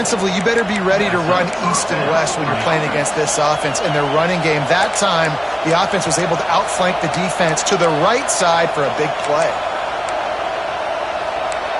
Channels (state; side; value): identical; both; correlation 1.00